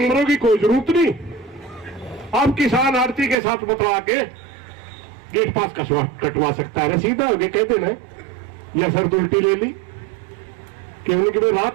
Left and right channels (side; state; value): left; drops out; at 3.4 s